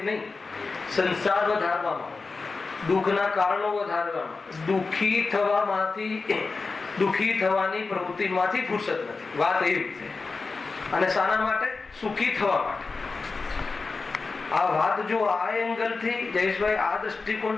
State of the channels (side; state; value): right; quieter; 4.1 dB